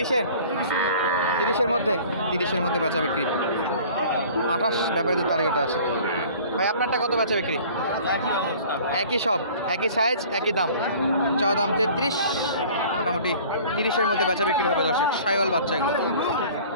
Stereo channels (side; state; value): both; inverted; correlation -0.47